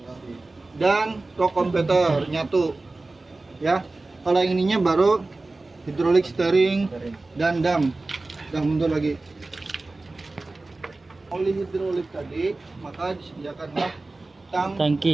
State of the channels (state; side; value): quieter; left; 3.2 dB